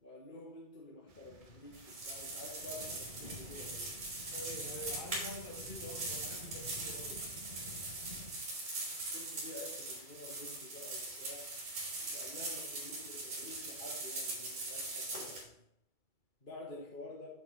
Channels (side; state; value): right; late; 2.3 ms